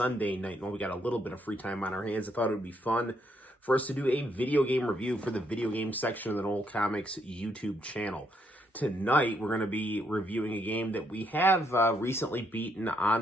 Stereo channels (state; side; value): normal; both; correlation 0.74